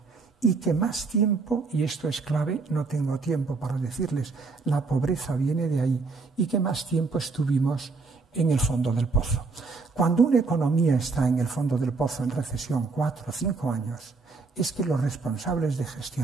y que más tiempo, y esto es clave, no tengo tiempo para decirles, la pobreza viene de ahí, y que más tiempo estuvimos en el fondo del pozo. Cuando una economía está en el fondo del pozo en recesión 4 o 5 años, es que los responsables de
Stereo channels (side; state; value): left; quieter; 4.3 dB